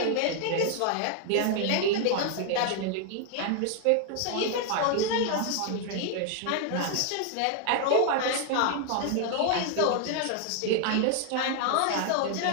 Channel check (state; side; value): different; both; correlation 0.00